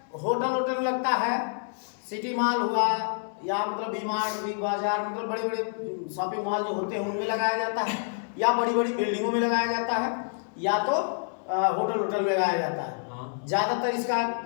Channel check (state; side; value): silent; right; digital silence